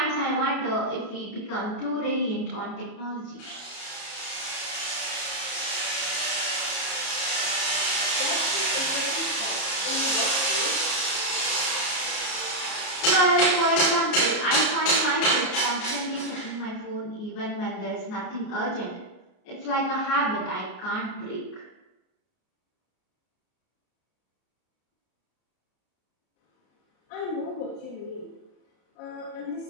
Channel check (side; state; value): right; late; 33 ms